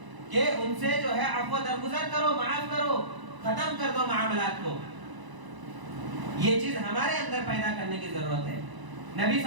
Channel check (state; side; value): late; left; 1.0 ms